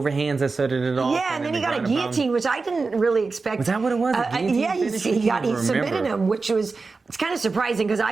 that started it off? Yeah, and then he got a guillotine, which I didn't really expect. Was that what it was? Yeah, he submitted him, which was it's kind of surprising because I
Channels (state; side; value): quieter; left; 4.1 dB